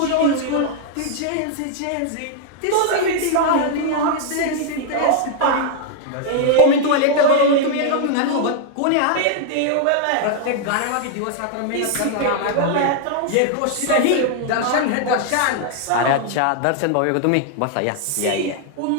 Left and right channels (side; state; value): both; different; correlation 0.00